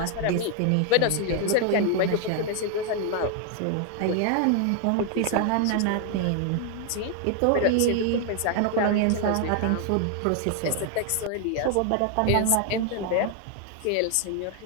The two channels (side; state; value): both; different; correlation 0.00